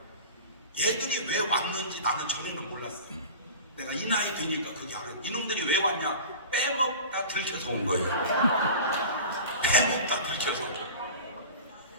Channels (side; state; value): both; inverted; correlation -0.35